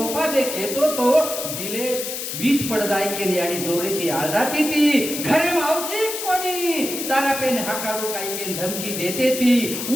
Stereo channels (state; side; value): noise; left; hiss, 5 dB below the sound